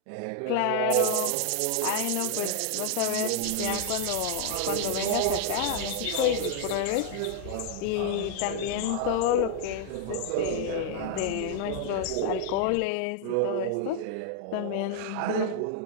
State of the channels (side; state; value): both; different; correlation 0.00